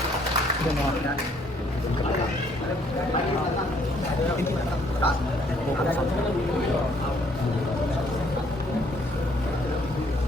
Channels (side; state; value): both; normal; correlation 0.65